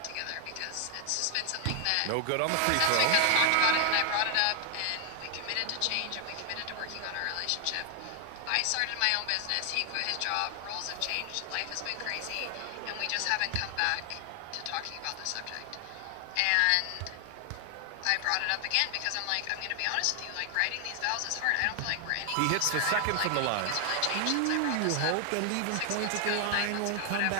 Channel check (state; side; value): different; both; correlation 0.00